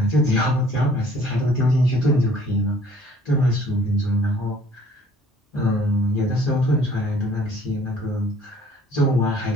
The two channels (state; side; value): normal; both; correlation 0.56